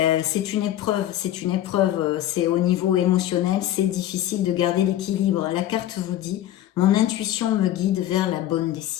C'est une épreuve, c'est au niveau émotionnel, c'est difficile de garder l'équilibre. La carte vous dit, mon intuition me guide vers la bonne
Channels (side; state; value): right; quieter; 12.8 dB